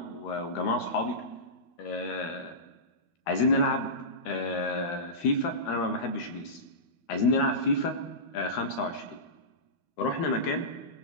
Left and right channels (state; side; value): late; right; 13 ms